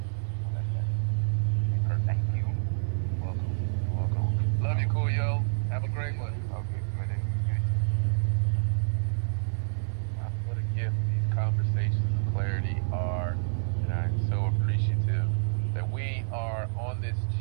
let that. Thank you. Welcome. Love you, Coolio. Have a great one. Okay, good. What a gift these conversations of clarity are, and I'm so appreciative that we are on this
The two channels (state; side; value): silent; left; 56 dB below the other